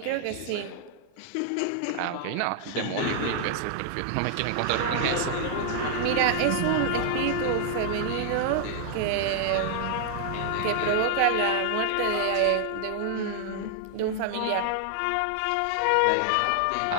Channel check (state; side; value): different; both; correlation 0.00